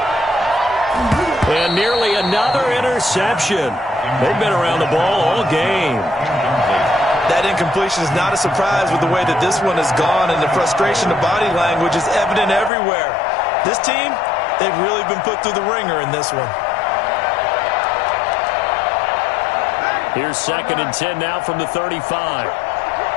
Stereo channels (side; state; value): right; drops out; at 12.7 s